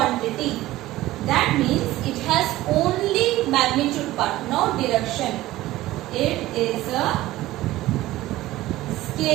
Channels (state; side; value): quieter; left; 16.5 dB